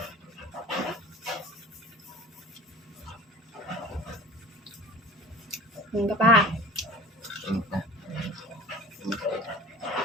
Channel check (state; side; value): normal; both; correlation 0.40